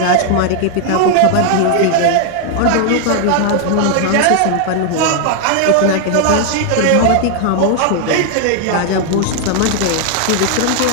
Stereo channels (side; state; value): both; different; correlation 0.00